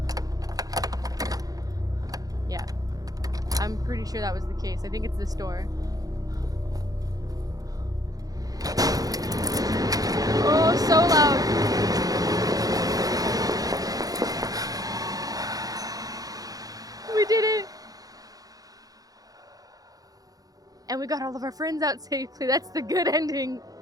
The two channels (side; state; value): left; late; 0.18 ms